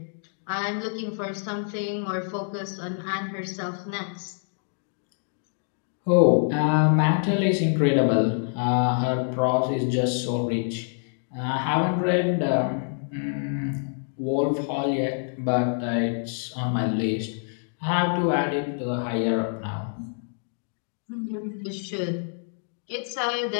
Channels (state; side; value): silent; right; digital silence